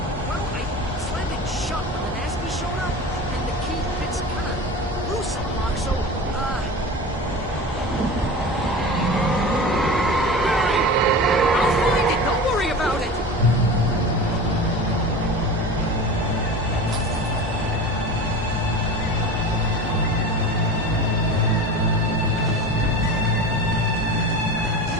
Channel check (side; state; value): both; normal; correlation 0.32